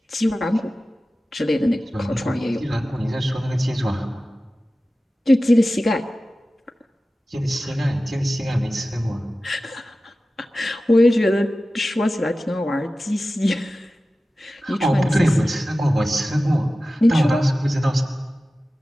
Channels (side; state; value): both; normal; correlation 0.95